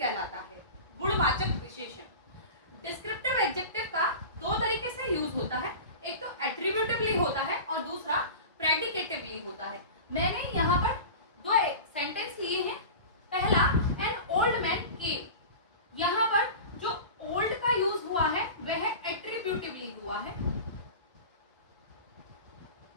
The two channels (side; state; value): both; inverted; correlation -0.32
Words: है, गुणवाचक विशेषण। डिस्क्रिप्टिव एडजेक्टिव का दो तरीके से यूज होता है, एक तो एट्रीब्यूटिवली होता है और दूसरा प्रेडिकेटिवली होता है। मैंने यहाँ पर दो सेंटेंस लिए हैं। पहला, एन ओल्ड मैन केम, यहाँ पर जो ओल्ड का यूज हुआ है वह एट्रीब्यूटिवली हुआ है।